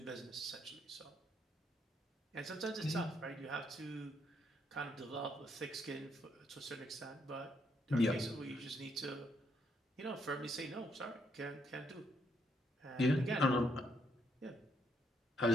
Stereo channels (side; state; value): both; normal; correlation 0.74